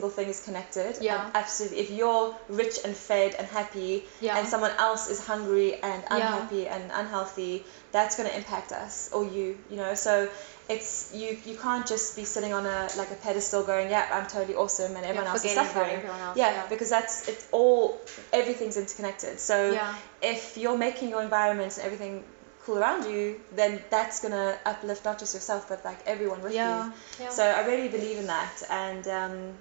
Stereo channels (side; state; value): left; silent; digital silence